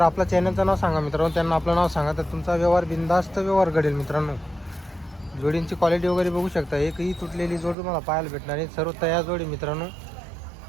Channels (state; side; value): drops out; left; at 7.8 s